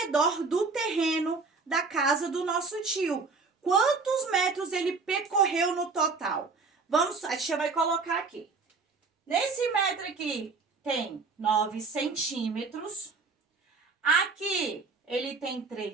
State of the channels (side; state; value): left; quieter; 4.4 dB